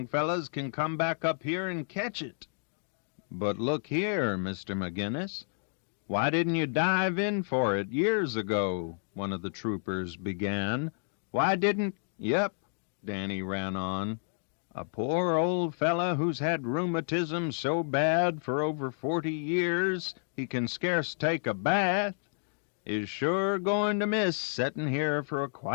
fellas can come back up here and catch it. But look here, Mr. McGinnis, why didn't you dive in for it years ago? One of the troopers began. Why didn't... Yep, Danny ran on. A poor old fella who's had rheumatism so bad for over 40 years he can scarce take a bath is sure going to miss settin' here for a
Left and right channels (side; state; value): right; silent; digital silence